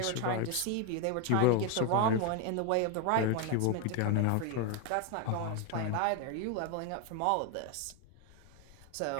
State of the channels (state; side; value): different; both; correlation 0.02